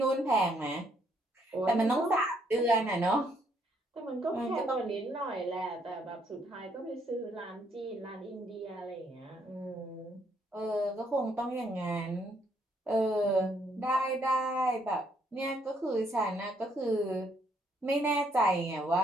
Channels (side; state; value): both; normal; correlation 0.70